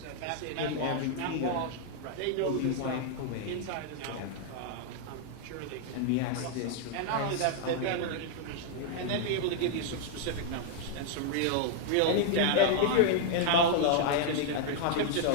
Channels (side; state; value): both; different; correlation 0.00